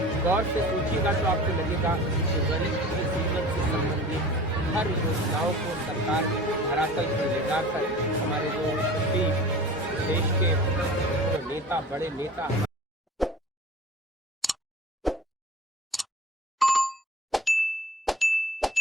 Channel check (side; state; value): both; normal; correlation 0.40